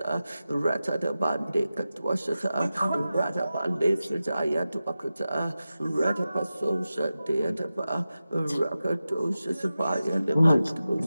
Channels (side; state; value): both; inverted; correlation -0.94